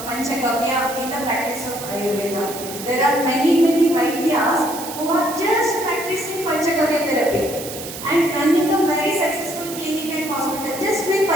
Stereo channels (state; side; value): noise; right; hiss, 10 dB below the sound